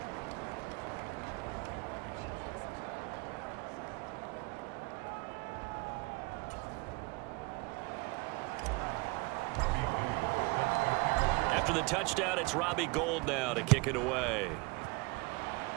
After the touchdown, it's Robbie Gould now to kick it away.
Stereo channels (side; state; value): left; quieter; 25.8 dB